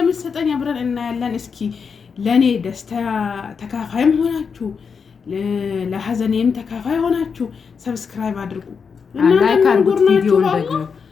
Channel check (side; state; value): right; quieter; 5.9 dB